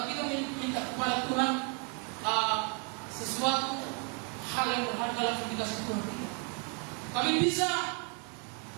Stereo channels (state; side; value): quieter; left; 35.6 dB